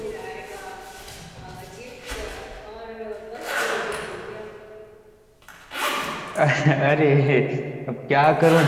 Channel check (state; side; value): identical; both; correlation 1.00